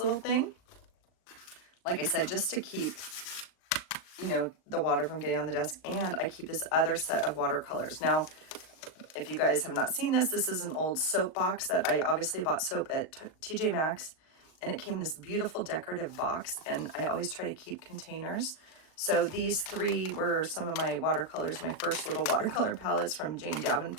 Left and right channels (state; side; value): late; right; 38 ms